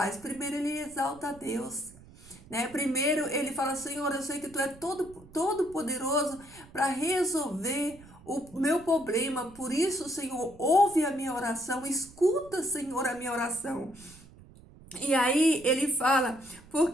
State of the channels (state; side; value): noise; right; rumble, 22 dB below the sound